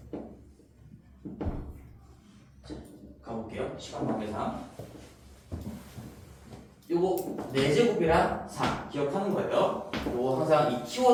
자, 가볼게요. 시간 관계상 요거 4제곱이랑 4 기억하는 거예요. 요거 항상 이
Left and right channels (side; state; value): both; identical; correlation 1.00